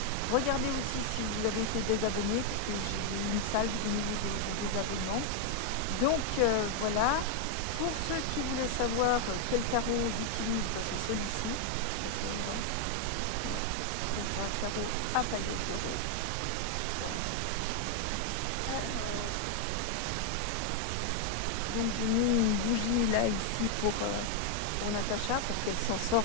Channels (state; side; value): different; both; correlation 0.00